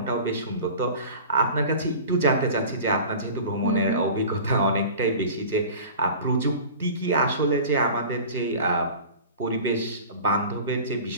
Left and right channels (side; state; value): both; inverted; correlation -0.38